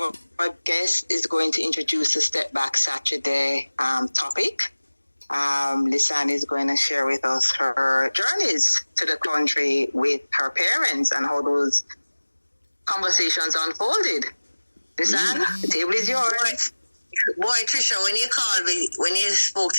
our guest is going to introduce the Step Back Saturday topic. Lisanne is going to share with us her journeys to the country with her parents and how those conversations unfolded. Lisanne, the table is yours. Boy, Trisha, when you spoke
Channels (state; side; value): inverted; both; correlation -1.00